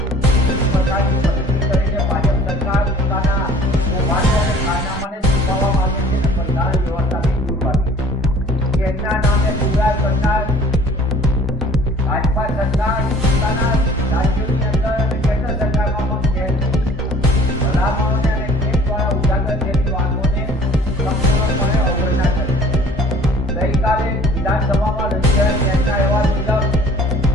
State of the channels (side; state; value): both; normal; correlation 0.51